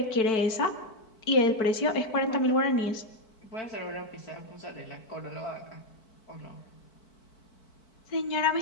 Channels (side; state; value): right; late; 4.5 ms